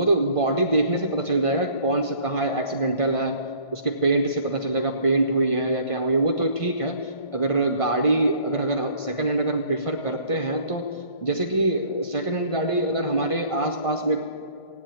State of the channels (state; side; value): late; right; 1.5 ms